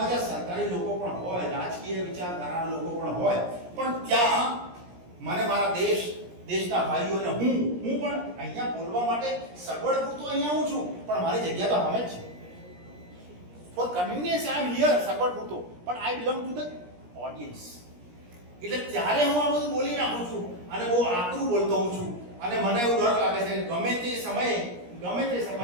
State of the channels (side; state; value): left; late; 17 ms